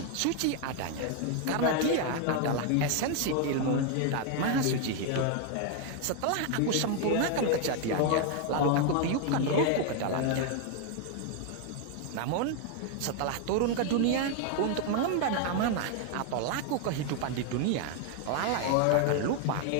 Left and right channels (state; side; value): different; both; correlation 0.00